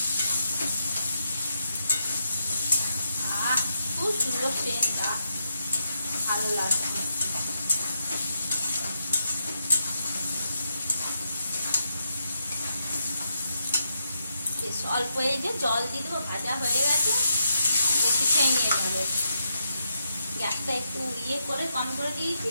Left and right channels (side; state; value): both; inverted; correlation -0.81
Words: খুব সুন্দর সেন্ট, ভালো লাগে। অল্প এই যে জল দিয়ে দেবো, ভাজা হয়ে গেছে, বেশি খেয়ে নিয়ে যাবে। গ্যাসটা একটু ইয়ে করে কম করে